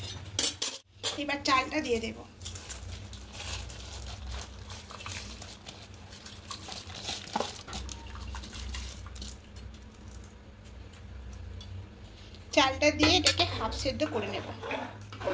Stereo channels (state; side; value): identical; both; correlation 1.00